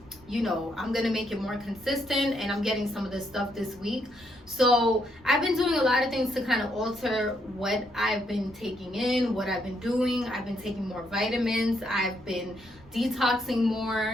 you know, I'm gonna make it more consistent, and I'm getting some of this stuff this week. So I've been doing a lot of things to kind of alter what I've been taking in, what I've been doing. I've been taking more vitamins, I've been detoxing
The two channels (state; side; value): normal; both; correlation 0.75